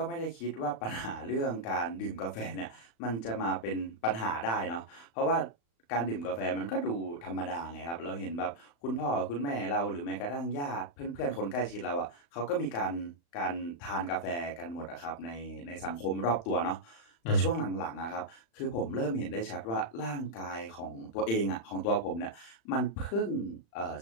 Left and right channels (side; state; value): right; late; 35 ms